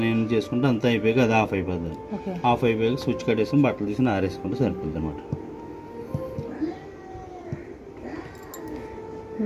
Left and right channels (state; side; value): identical; both; correlation 1.00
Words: ఏం చేసుకుంటే అంతా అయిపోయాక అది ఆఫ్ అయిపోతుంది. ఆఫ్ అయిపోయాక స్విచ్ కట్టేసుకుని బట్టలు తీసుకుని ఆరేసుకుంటే సరిపోతుంది అనమాట.